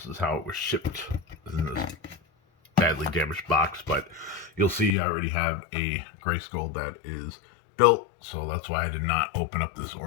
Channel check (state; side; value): drops out; right; at 5.0 s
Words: is how it was shipped in this badly damaged box, but you'll see I already have a Grayskull that is built, so that's why I did not open up this